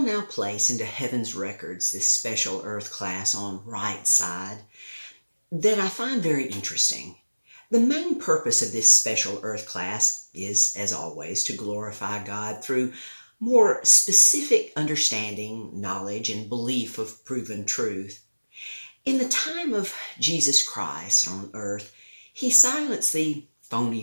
now place into heaven's records this special Earth class on right side that I find very interesting. The main purpose of this special Earth class is, as always, to glorify God through more specific understanding, knowledge, and belief of proven truth. In the time of Jesus Christ on earth, he silenced the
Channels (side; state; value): both; inverted; correlation -1.00